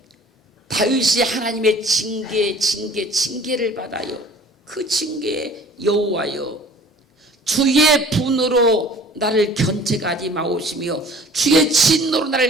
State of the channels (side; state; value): both; normal; correlation 0.49